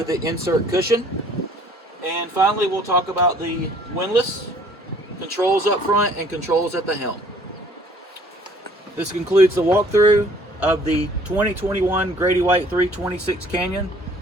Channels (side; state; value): both; normal; correlation 0.56